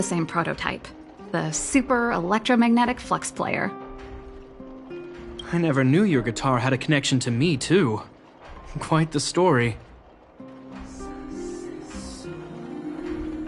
same prototype. The Super Electromagnetic Flux Player. I never knew your guitar had a connection to me, too. Quite the story.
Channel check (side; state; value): both; identical; correlation 1.00